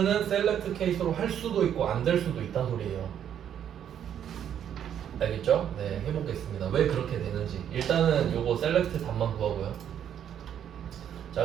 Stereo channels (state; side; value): quieter; left; 9.5 dB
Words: 셀렉트 케이스로 할 수도 있고 안 될 수도 있다는 소리예요. 알겠죠? 네, 해보겠습니다. 왜 그렇게 되는지. 일단은 요거 셀렉트 답만 구하고요. 자,